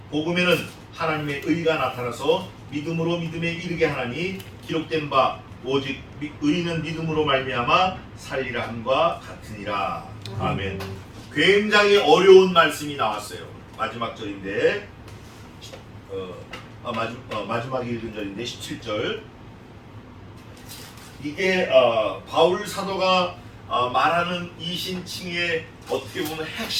복음에는 하나님의 의가 나타나서 믿음으로 믿음에 이르게 하나니 기록된 바 오직 의는 믿음으로 말미암아 살리라 함과 같으니라. 아멘. 굉장히 어려운 말씀이 나왔어요. 마지막 절인데 마지막에 읽은 절인데 17절. 이게 바울 사도가 말하는 이신칭의 어떻게 보면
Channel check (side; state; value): both; identical; correlation 1.00